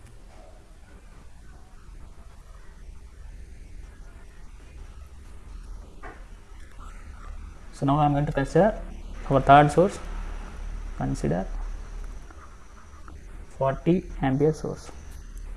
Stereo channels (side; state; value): both; identical; correlation 1.00